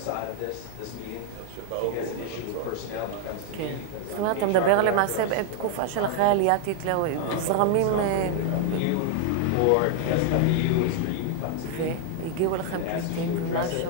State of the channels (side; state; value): both; different; correlation 0.00